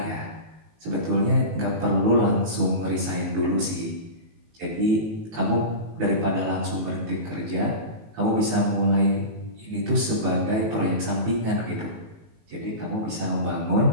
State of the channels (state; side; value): late; left; 18 ms